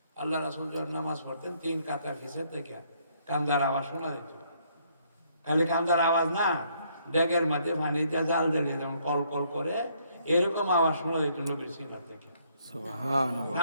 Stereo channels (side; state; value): both; inverted; correlation -0.68